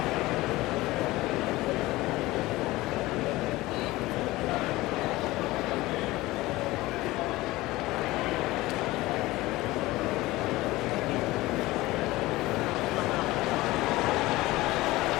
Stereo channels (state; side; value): quieter; right; 19.0 dB